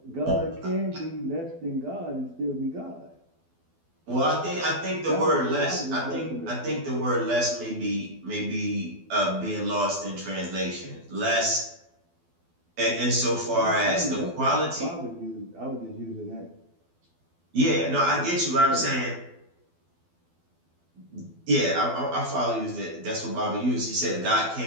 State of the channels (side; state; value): left; late; 12 ms